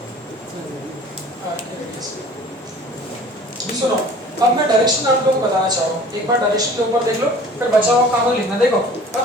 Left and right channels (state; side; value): normal; both; correlation 0.47